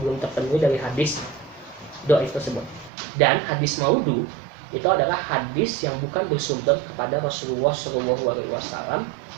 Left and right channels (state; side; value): drops out; left; at 2.9 s